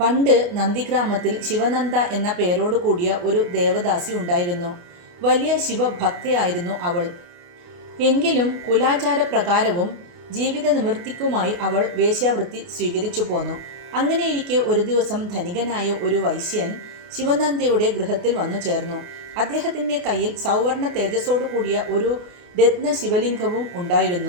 പണ്ട് നന്ദിഗ്രാമത്തിൽ ശിവനന്ദ എന്ന പേരോട് കൂടിയ ഒരു ദേവദാസി ഉണ്ടായിരുന്നു. വലിയ ശിവഭക്തയായിരുന്നു അവൾ. എങ്കിലും കുലാചാരപ്രകാരവും ജീവിത നിവൃത്തിക്കുമായി അവൾ വേശ്യാവൃത്തി സ്വീകരിച്ചു പോന്നു. അങ്ങനെയിരിക്കെ ഒരു ദിവസം ധനികനായ ഒരു വൈശ്യൻ ശിവനന്ദയുടെ ഗൃഹത്തിൽ വന്നു ചേർന്നു. അദ്ദേഹത്തിൻ്റെ കയ്യിൽ സൗവർണ തേജസ്സോടു കൂടിയ ഒരു രത്ന ശിവലിംഗവും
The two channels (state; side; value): late; left; 28 ms